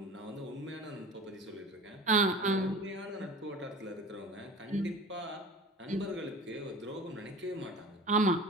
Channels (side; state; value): both; normal; correlation 0.38